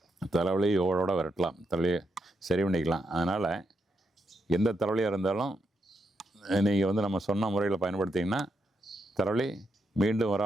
தலைவலி ஓடோட விரட்டலாம், தலையை சரி பண்ணிக்கலாம். அதனால் எந்த தலைவலியாக இருந்தாலும் நீங்கள் வந்து நம்ம சொன்ன முறையில் பயன்படுத்திங்கன்னா தலைவலி மீண்டும்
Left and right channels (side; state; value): both; normal; correlation 0.82